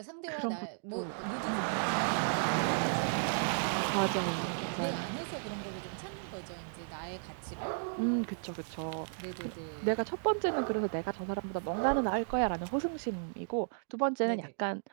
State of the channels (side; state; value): left; silent; digital silence